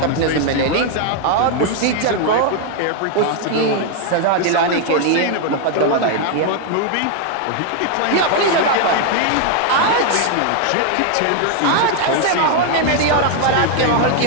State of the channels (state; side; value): different; both; correlation 0.00